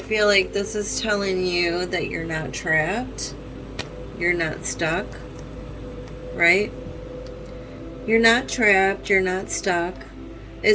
like this is telling you that you're not trapped. You're not stuck. Right? You're not trapped. You're not stuck.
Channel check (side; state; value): both; identical; correlation 1.00